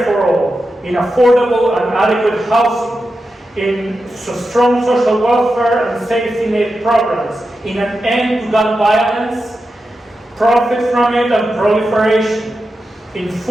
for all, in affordable and adequate housing, in strong social welfare and safety net programs, in an end to gun violence, profit from it and proliferation, in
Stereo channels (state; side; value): normal; both; correlation 0.90